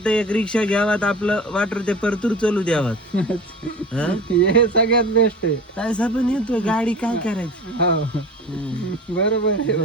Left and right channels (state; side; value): normal; both; correlation 0.36